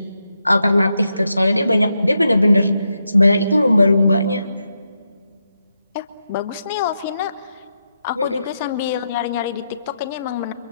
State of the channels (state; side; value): inverted; both; correlation -0.84